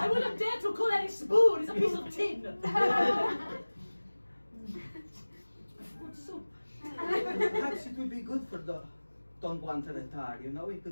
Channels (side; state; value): both; inverted; correlation -1.00